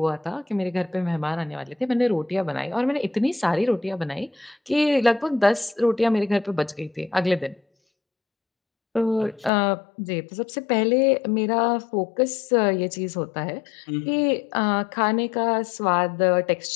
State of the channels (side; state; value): right; drops out; at 9.5 s